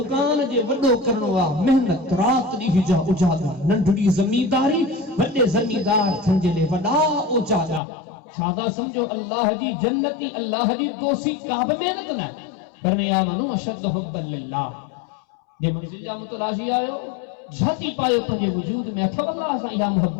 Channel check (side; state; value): right; drops out; at 7.8 s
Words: जे वडो करणो आ मेहनत रात दी जा उजादा नंढड़ी जमींदारी वडे जमींदार थंजले वडा उजादा सादा समझो अल्लाह दी जन्नती अल्लाह दी दोसी काब मेहनत न पर मैं आमनु अशद हुब्बन लिल्लाह जे मंजिल जा मुतलाशी आयो जाती पायो पंजे वजूद में अथव अल्लाह सा या